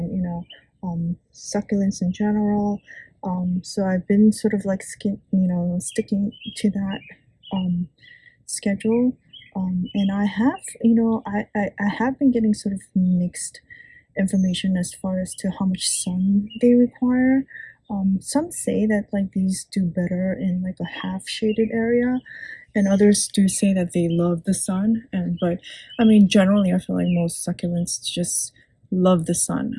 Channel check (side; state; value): both; identical; correlation 1.00